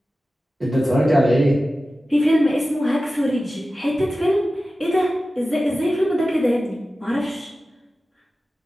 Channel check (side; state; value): both; normal; correlation 0.95